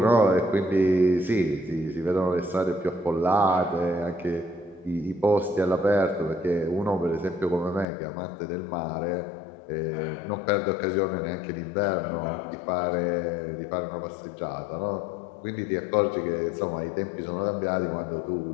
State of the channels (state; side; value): drops out; right; at 7.9 s